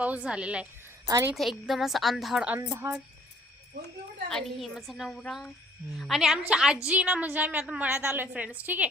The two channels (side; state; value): both; normal; correlation 0.59